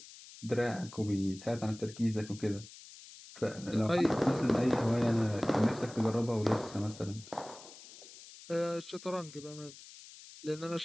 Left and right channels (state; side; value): noise; left; hiss, 18 dB below the sound